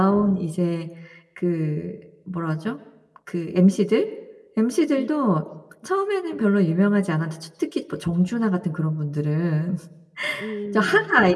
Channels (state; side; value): identical; both; correlation 1.00